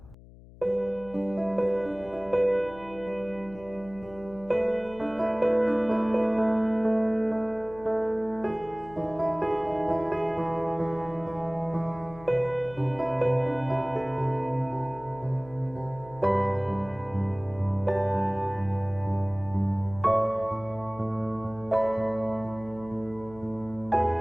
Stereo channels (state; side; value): noise; left; hum, 20 dB below the sound